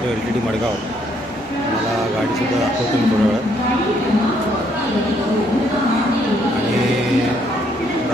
LTT मडगाव. मला गाडीसुद्धा दाखवतो मी थोड्या वेळात. आणि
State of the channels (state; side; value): normal; both; correlation 0.70